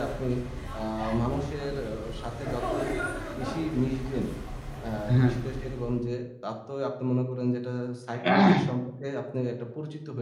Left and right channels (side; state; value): both; identical; correlation 1.00